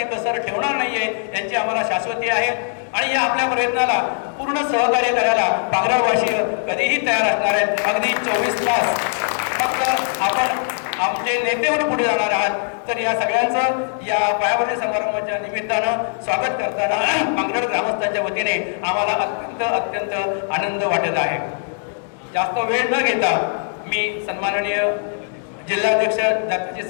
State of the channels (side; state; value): right; silent; digital silence